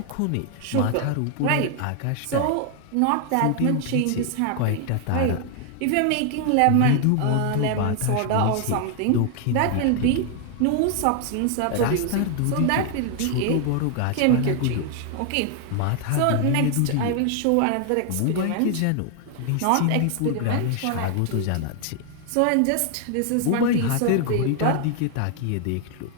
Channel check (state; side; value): different; both; correlation 0.00